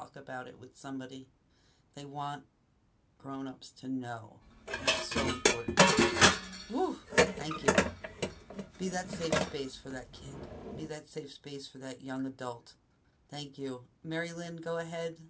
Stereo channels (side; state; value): both; identical; correlation 1.00